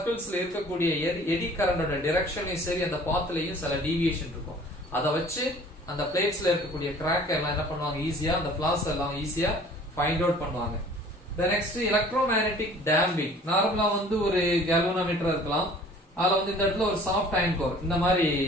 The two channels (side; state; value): both; normal; correlation 0.50